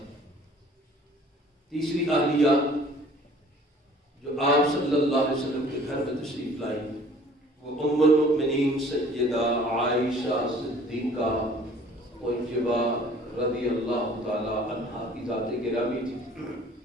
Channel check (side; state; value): both; normal; correlation 0.52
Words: تیسری اہلیہ جو آپ صلی اللہ علیہ وسلم کے گھر میں تشریف لائی وہ ام المؤمنین سیدہ عائشہ صدیقہ طیبہ رضی اللہ تعالی عنہا کی ذات گرامی تھی۔